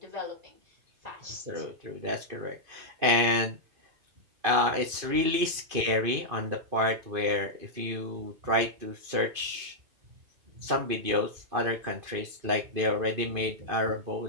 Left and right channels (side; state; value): left; late; 2.5 ms